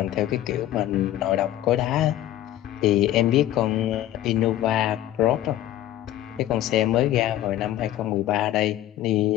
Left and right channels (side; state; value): right; quieter; 13.3 dB